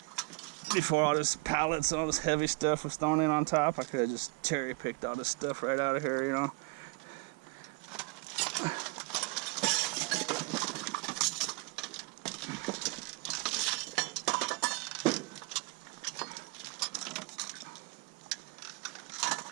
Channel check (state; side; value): quieter; left; 27.1 dB